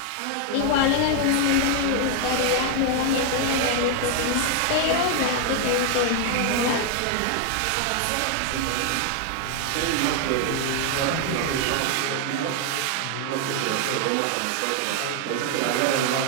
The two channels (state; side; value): different; both; correlation 0.00